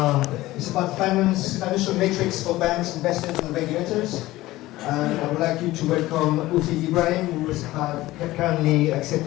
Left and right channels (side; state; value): right; quieter; 17.4 dB